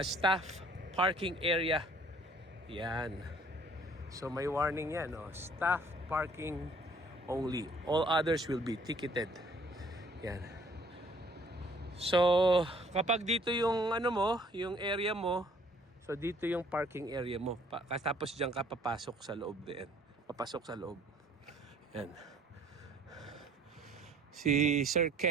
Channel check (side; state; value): both; normal; correlation 0.57